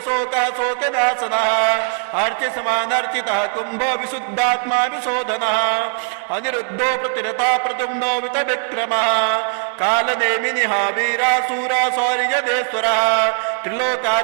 शोकनाशनः अर्चिसमानर्चितः कुम्भो विशुद्धात्मा विशोधनः अनिरुद्धो प्रतिरता प्रद्युम्नो वितविक्रमः कालनेमिनिः वीरासूरा शौर्यदेश्वरः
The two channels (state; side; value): silent; left; digital silence